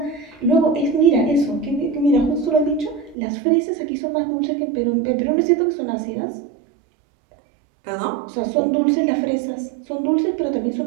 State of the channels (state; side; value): drops out; left; at 3.2 s